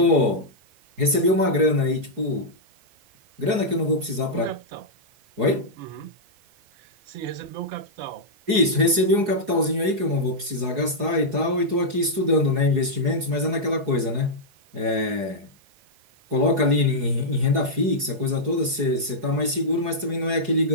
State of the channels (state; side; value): late; left; 4.7 ms